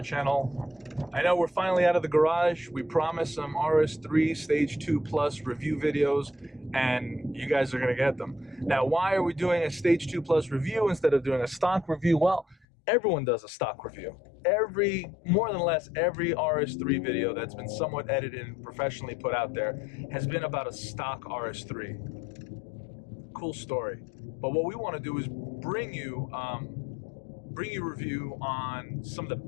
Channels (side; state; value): right; drops out; at 12.7 s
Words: I know we're finally out of the garage. We promised some RS3 Stage 2 Plus review videos, and you guys are going to get them. Now, why are we doing a Stage 2 Plus review instead of doing a stock review? Well, everyone does a stock review. More than less, every RS3 video that's been somewhat edited and professionally put out there has been about a stock RS3. Cool story. But what we want to do is bring you review on some of the